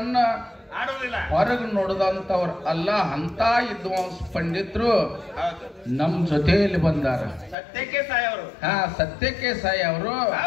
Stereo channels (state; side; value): drops out; right; at 7.6 s